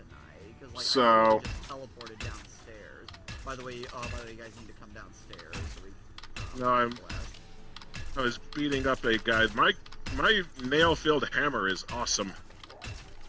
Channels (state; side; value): identical; both; correlation 1.00